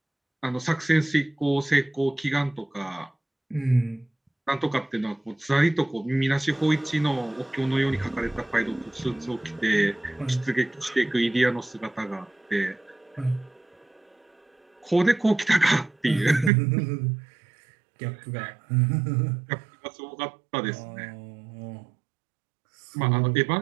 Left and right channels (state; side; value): drops out; left; at 16.5 s